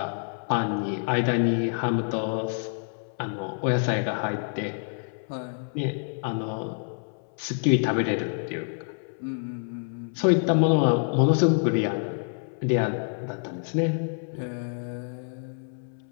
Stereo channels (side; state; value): right; silent; 60 dB below the other